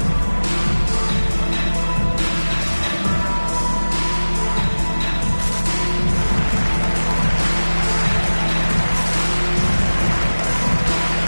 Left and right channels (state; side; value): inverted; both; correlation -1.00